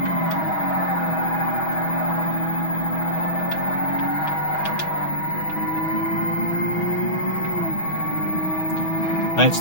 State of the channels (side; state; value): right; late; 6.2 ms